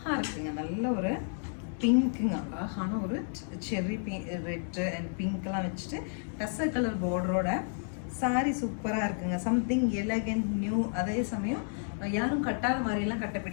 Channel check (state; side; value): silent; right; 57 dB below the other